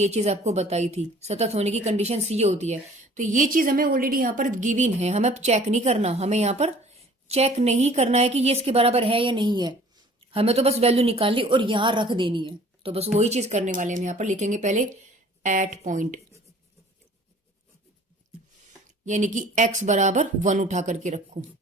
चीज आपको बताई थी, सतत होने की कंडीशन ये होती है। तो ये चीज हमें ऑलरेडी यहां पर गिवन है, हमें अब चेक नहीं करना, हमें यहां पर चेक नहीं करना है कि ये इसके बराबर है या नहीं है, हमें तो बस वैल्यू निकालनी और यहां रख देनी है। तो बस वही चीज करने वाले हम यहां पर लिखेंगे पहले एट पॉइंट, यानी कि x = 1 उठा करके रखो,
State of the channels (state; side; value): normal; both; correlation 0.51